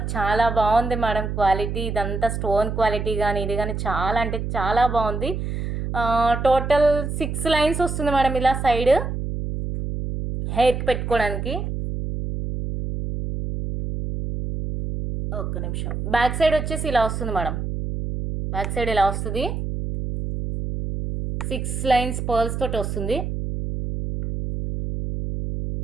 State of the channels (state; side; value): noise; right; hum, 4 dB below the sound